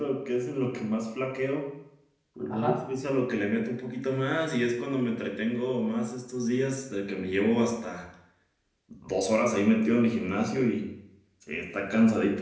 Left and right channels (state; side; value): identical; both; correlation 1.00